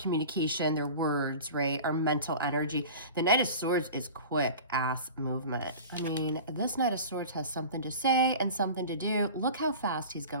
their words, right? Our mental energy. The Knight of Swords is quick ass movement. I mean, this Knight of Swords has something to say and something to do. Look how fast he's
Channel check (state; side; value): inverted; both; correlation -0.37